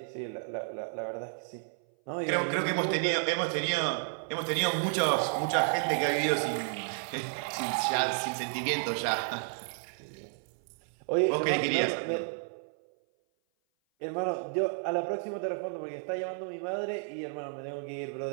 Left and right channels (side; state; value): left; silent; 56 dB below the other